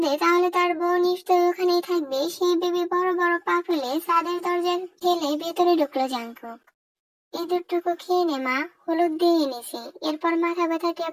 তাহলে তার বউ নিশ্চয়ই ওখানেই থাকবে, সেই ভেবে বড় বড় পা ফেলে ছাদের দরজা ঠেলে ভেতরে ঢুকলো জাঙ্কুক। ইঁদুরটুকু খেয়ে নে মা, হলুদ দিয়ে এনেছি, এরপর মাথা ব্যথা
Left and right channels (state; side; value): identical; both; correlation 1.00